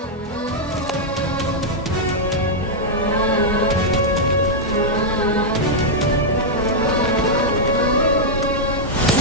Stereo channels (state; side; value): normal; both; correlation -0.05